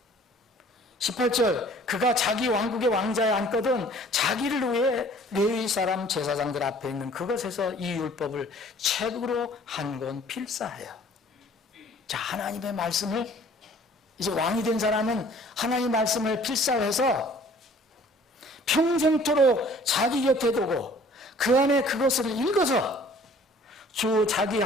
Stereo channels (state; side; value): normal; both; correlation 0.52